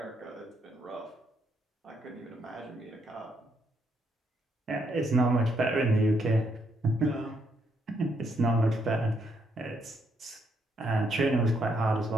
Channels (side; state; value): both; normal; correlation 0.74